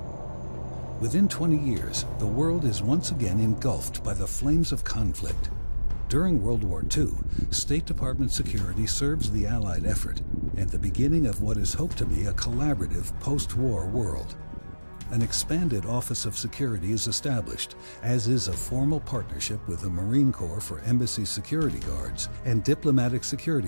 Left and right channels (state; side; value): inverted; both; correlation -1.00